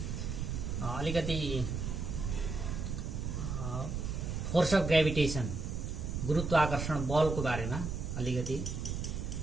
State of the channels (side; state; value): right; noise; rumble, 3 dB below the sound